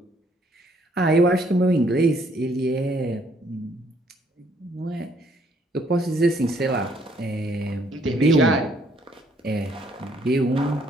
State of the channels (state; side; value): normal; both; correlation 0.66